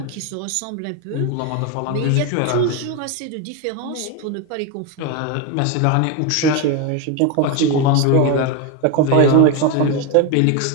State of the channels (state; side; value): different; both; correlation 0.02